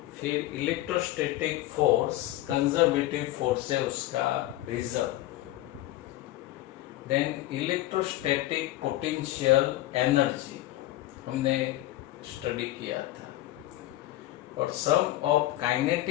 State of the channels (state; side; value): quieter; right; 15.8 dB